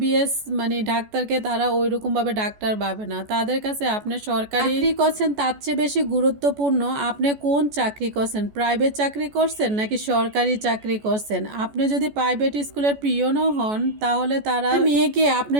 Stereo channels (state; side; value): late; left; 14 ms